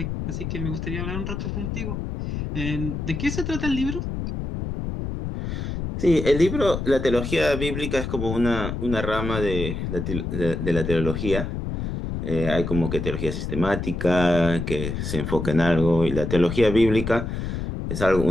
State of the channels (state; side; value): noise; left; rumble, 4 dB below the sound